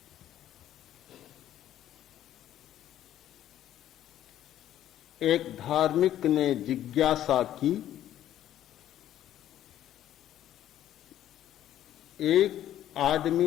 एक धार्मिक ने जिज्ञासा की, एक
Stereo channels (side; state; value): right; quieter; 12.0 dB